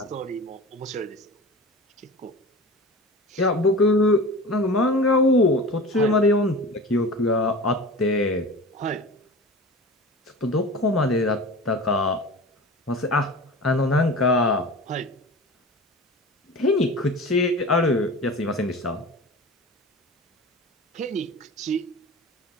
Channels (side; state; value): both; normal; correlation 0.34